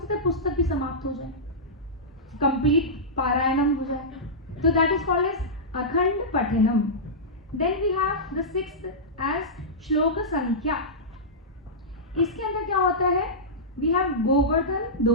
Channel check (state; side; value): normal; both; correlation -0.14